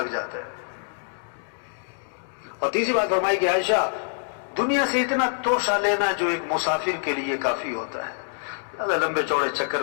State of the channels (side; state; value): right; silent; digital silence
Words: جاتا ہے۔ اور تیسری بات فرمائی کہ عائشہ دنیا سے اتنا توشہ لینا جو ایک مسافر کے لیے کافی ہوتا ہے، زیادہ لمبے چوڑے چکر